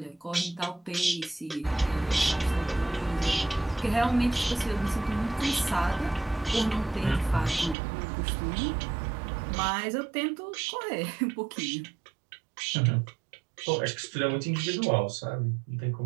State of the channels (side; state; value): left; drops out; at 7.8 s